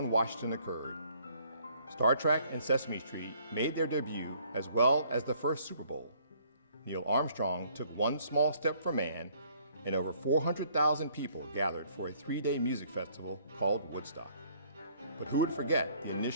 Washington occurred. Star Trek and Sesame Street made their debut, as well as the first Super Bowl. Neil Armstrong took one small step for man, and over 400,000 people gathered for a 3-day music festival called Woodstock. But who would forget the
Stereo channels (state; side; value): inverted; both; correlation -0.62